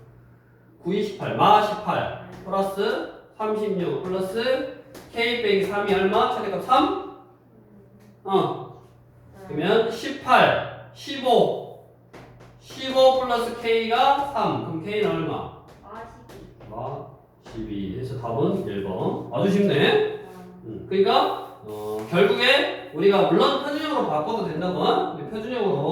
9, 28. 마 18. 플러스 36. 플러스 k 빼기 3이 얼마? 최대값 3? 그러면 18, 15. 15 플러스 k가 3. 그럼 k는 얼마? 마 12. 그래서 답은 1번. 아주 쉽네. 그러니까 결국에 우리가 물론 표준형으로 바꿔도 된다고. 근데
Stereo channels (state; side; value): identical; both; correlation 1.00